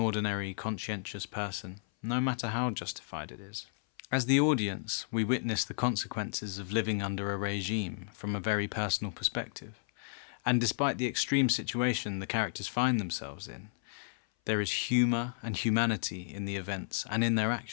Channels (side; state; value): right; silent; 56 dB below the other